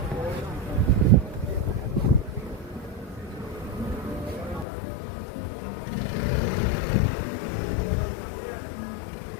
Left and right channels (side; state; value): right; drops out; at 4.7 s